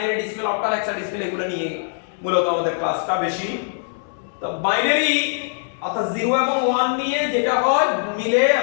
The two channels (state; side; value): silent; right; digital silence